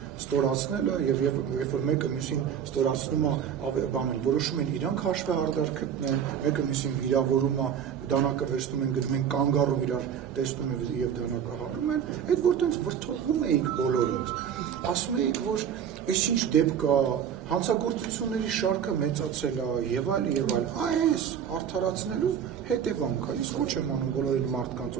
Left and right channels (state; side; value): quieter; left; 8.4 dB